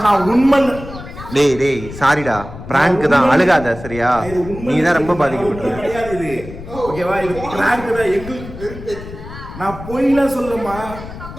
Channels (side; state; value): left; noise; rumble, 13 dB below the sound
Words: நான் உண்மை. டேய் டேய் சாரிடா, பிராங்க் தான், அழுகாத சரியா? நீ தான் ரொம்ப பாதிக்கப்பட்ட. கிடையாது இது. ஓகேவா? இது பிராங்க் தான். எங்களுக்கு நான் பொய்லாம் சொல்லமா.